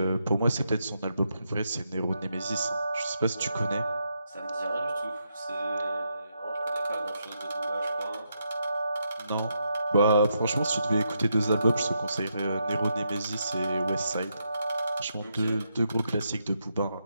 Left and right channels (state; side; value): inverted; both; correlation -0.81